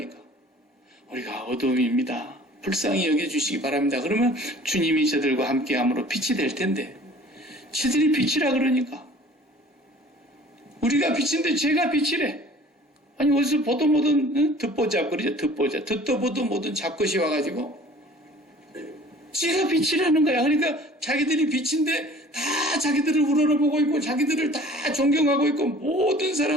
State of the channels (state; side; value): normal; both; correlation 0.49